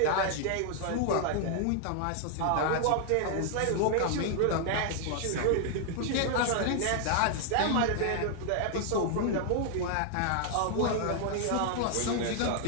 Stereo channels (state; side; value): different; both; correlation 0.00